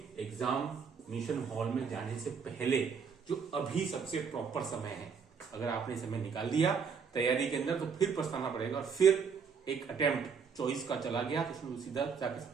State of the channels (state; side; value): quieter; left; 6.1 dB